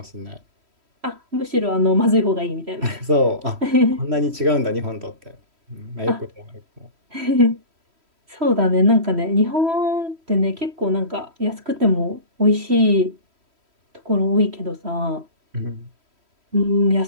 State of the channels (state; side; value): late; left; 3.1 ms